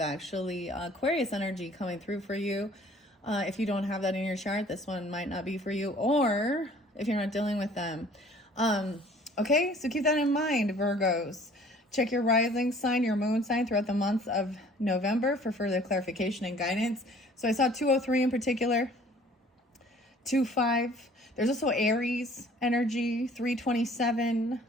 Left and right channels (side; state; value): both; normal; correlation 0.53